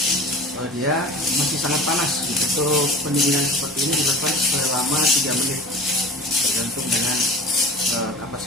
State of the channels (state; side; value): normal; both; correlation 0.38